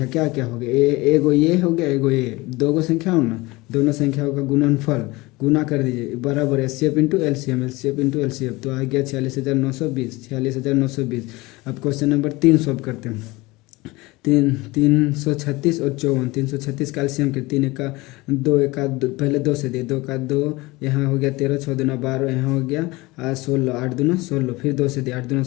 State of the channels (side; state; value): right; quieter; 21.9 dB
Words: क्या क्या हो गया, एगो ये हो गया, एगो ये, दो गो संख्या हो ना, दोनों संख्याओं का गुणनफल गुना कर दीजिए बराबर HCF into LCM, LCF into LCF. तो आ गया 46,920। अब क्वेश्चन नंबर 3 सॉल्व करते हैं। 336 और 54, 336 का एलसीएम के 3 का 2 का 2, पहले 2 से दिए 2 का 2, यहाँ हो गया 13, 6 दूना 12, यहाँ हो गया 16, 8 दूना 16, फिर 2 से दिए 8 दूना